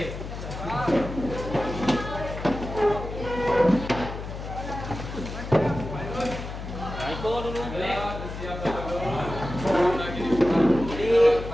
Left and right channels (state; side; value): noise; left; hum, 8 dB below the sound